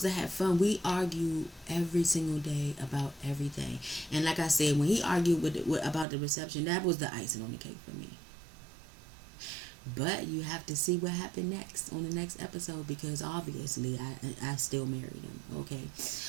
to have fun. We argue every single day about everything. And like I said, when he argued about the reception, that was the icing on the cake for me. But you have to see what happened next on the next episode, because obviously I still married him. Okay.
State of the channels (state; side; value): drops out; left; at 6.1 s